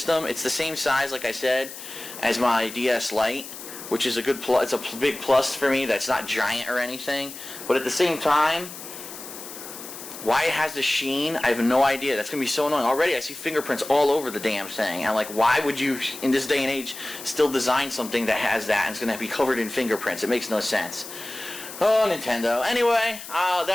It's the same size, like I said, as my DS Lite, which is a good plus. It's a big plus for me. That's not giant or anything. But at the same time, why it has the sheen, I have no idea. That's going to be so annoying. Already, I see fingerprints all over the damn thing. I'm like, why would you, in this day and age, still design something that has that and it's going to be covered in fingerprints? It makes no sense. Oh, Nintendo. Anyway,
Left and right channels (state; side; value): noise; left; hiss, 12 dB below the sound